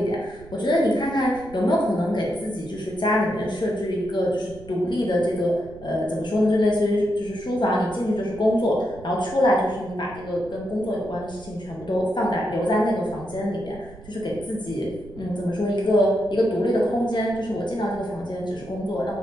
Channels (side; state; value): right; noise; rumble, 18 dB below the sound